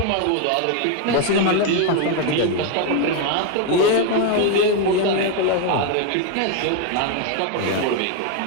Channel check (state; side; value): different; both; correlation 0.01